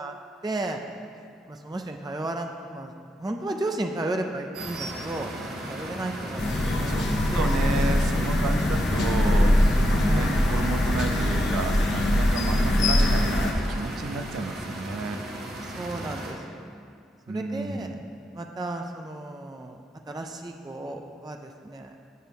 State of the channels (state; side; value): normal; both; correlation 0.84